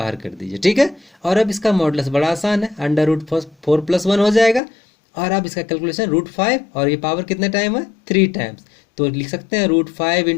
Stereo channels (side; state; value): right; drops out; at 4.6 s